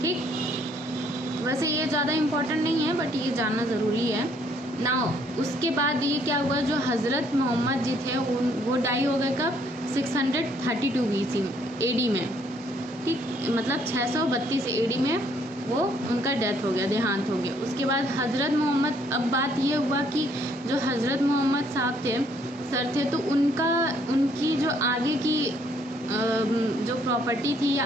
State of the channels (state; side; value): normal; both; correlation 0.66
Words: ठीक, वैसे ये ज़्यादा इम्पोर्टेंट नहीं है बट ये जानना ज़रूरी है। नाउ उसके बाद ये क्या हुआ, जो हज़रत मोहम्मद जी थे वो डाई हो गए कब? 632 BC AD में। ठीक, मतलब 632 AD में वो उनका डेथ हो गया, देहांत हो गया। उसके बाद हज़रत मोहम्मद, अब बात ये हुआ कि जो हज़रत मोहम्मद साहब थे सर थे, तो उनकी जो आगे की जो प्रॉपर्टी थी या